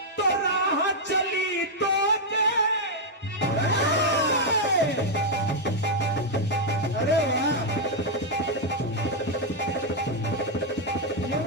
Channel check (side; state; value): both; normal; correlation -0.02